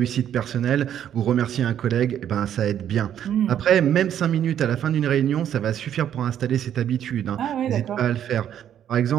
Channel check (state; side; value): quieter; left; 10.0 dB